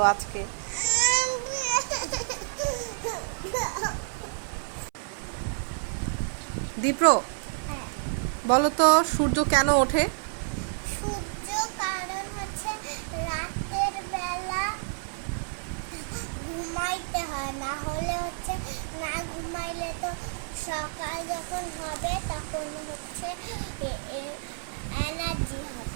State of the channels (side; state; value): left; silent; 59 dB below the other